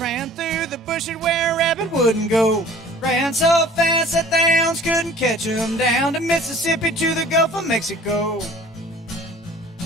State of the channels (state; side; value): normal; both; correlation 0.48